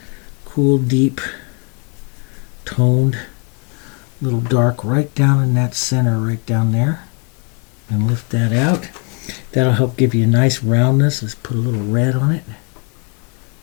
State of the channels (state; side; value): quieter; right; 36.7 dB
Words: Cool, deep, toned, little dark right down in that center, right down there. And lift that out. That'll help give you a nice roundness. Let's put a little red on it.